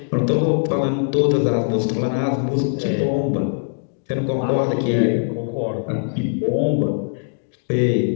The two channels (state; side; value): silent; right; digital silence